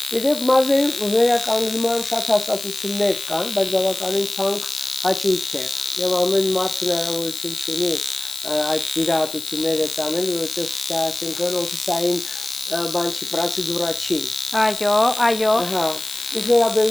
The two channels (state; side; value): noise; left; hiss, 10 dB below the sound